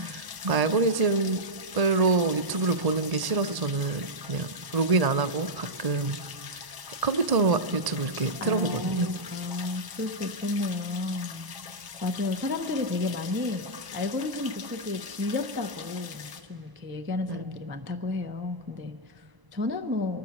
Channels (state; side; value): late; left; 1.0 ms